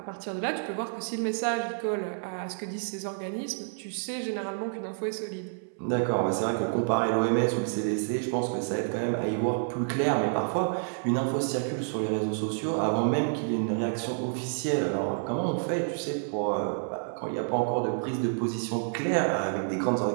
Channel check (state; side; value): silent; left; 59 dB below the other